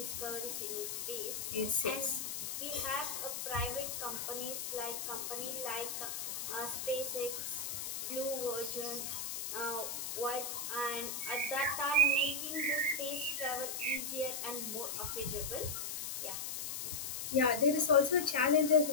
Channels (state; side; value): noise; left; hiss, 4 dB below the sound